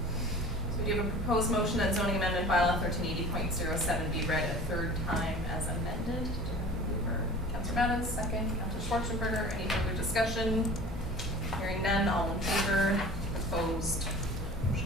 we do have a proposed motion that zoning amendment bylaw 1380.07 be read a third time as amended. Councillor Mattis, second. Councillor Schwarzenberger, any further discussion? Hearing none, all in favor? Opposed?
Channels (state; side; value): normal; both; correlation 0.42